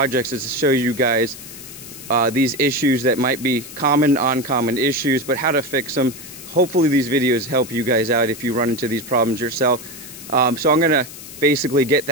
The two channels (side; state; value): left; noise; hiss, 14 dB below the sound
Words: is to show you guys these issues that might be common, uncommon issues, but how to fix them. Hopefully these videos help you guys out if you run into these problems yourself. So I'm gonna basically get